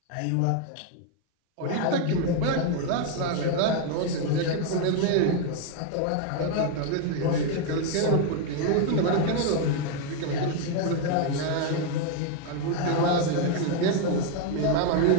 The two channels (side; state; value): both; different; correlation 0.01